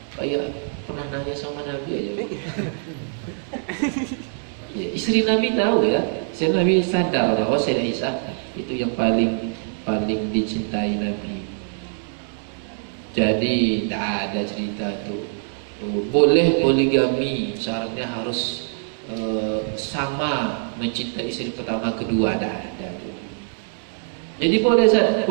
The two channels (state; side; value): silent; left; digital silence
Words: Kayak pernah nanya sama Nabi aja. Ya, istri Nabi tahu ya. Sayyidah Nabi sadar bahwa Sayyidah Aisyah itu yang paling dicintai Nabi. Jadi tidak ada cerita tuh boleh poligami, syaratnya harus sama mencintai istri pertama kedua, tidak ada tuh. Jadi boleh